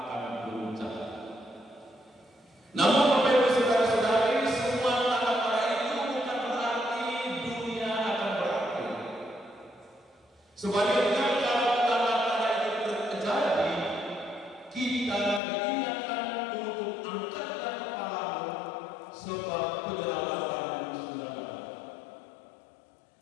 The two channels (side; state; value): right; drops out; at 15.4 s